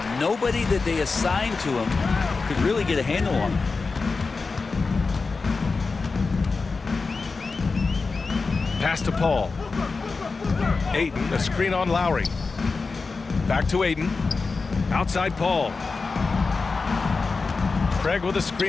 Nobody that they assigned to him could really get a handle on him. Pass to Paul. Ayton, a screen on Lowry. Back to Ayton. Outside Paul. Craig with a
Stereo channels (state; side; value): quieter; right; 4.2 dB